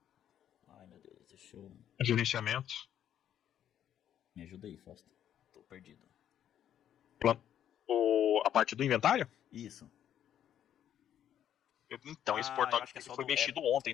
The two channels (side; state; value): right; quieter; 10.3 dB